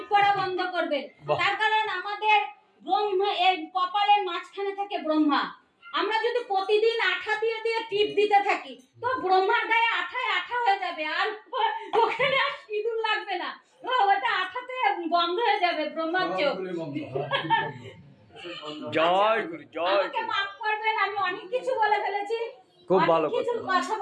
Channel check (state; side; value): identical; both; correlation 1.00